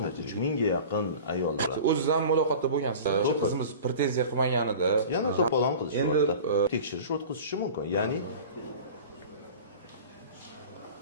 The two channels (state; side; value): inverted; both; correlation -0.38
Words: 3000 ga yaqin ayollar. O'ziz ham muloqotda bo'lgansiz. Qizimiz pretenziya qilmaganida yana to'polon qilish endi tekshirish o'tkazishi mumkin. Ya'ni